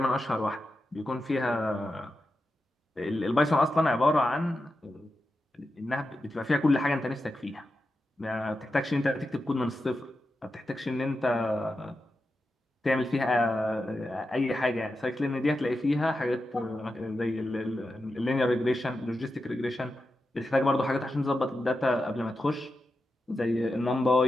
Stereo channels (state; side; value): normal; both; correlation 0.89